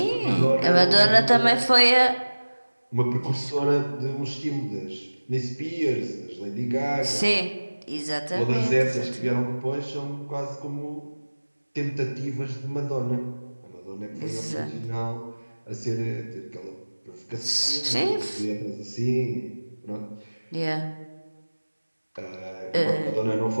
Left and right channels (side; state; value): both; inverted; correlation -1.00